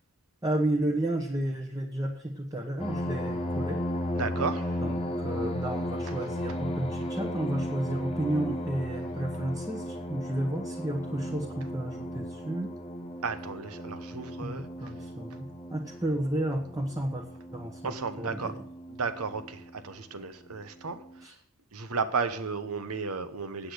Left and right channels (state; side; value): normal; both; correlation 0.64